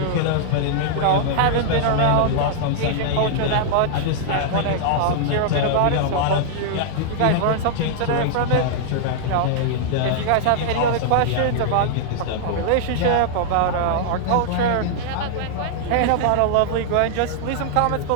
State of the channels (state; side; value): different; both; correlation -0.01